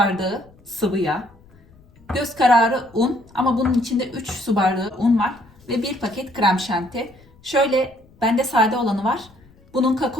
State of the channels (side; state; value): left; noise; rumble, 28 dB below the sound